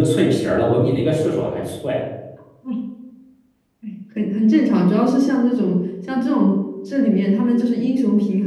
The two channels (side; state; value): both; identical; correlation 1.00